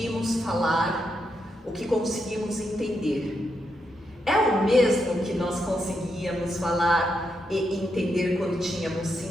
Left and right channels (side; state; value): both; normal; correlation 0.82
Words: falar, o que conseguimos entender, é o mesmo que nós conseguíamos falar e entender quando tínhamos